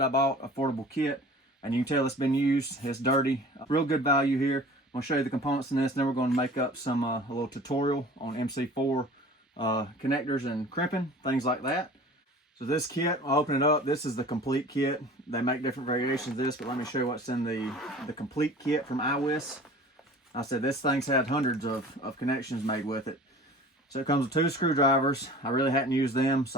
I bought, affordable kit. And you can tell it's been used, it's dirty. Real good value here. I'm gonna show you the components in this, and then we're gonna make up some a little tutorial on MC4 connectors and crimping, things like that. So this kit, I'll open it up. This is the complete kit. They make different variations of this, but let me show you what's in the complete kit from iWis. I said this thing's had hundreds of connections made with it. So it comes with 2 screwdrivers. I really hadn't used them,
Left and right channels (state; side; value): normal; both; correlation 0.43